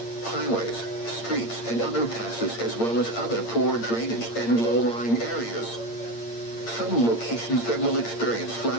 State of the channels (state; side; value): late; right; 8.7 ms